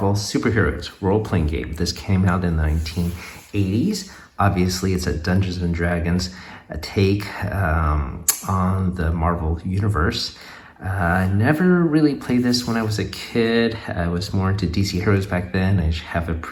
Superheroes role-playing game. This came out in the 1980s. Obviously, it's a Dungeons & Dragons take on the Marvel Universe. I never really played this when I was a kid. I was more into DC Heroes back then. I have a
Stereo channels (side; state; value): both; identical; correlation 1.00